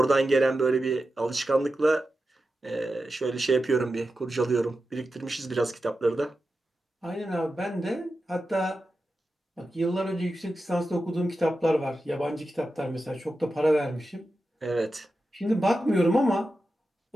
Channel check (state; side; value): normal; both; correlation 0.91